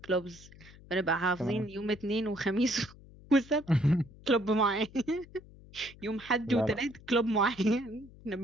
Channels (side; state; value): left; noise; hum, 21 dB below the sound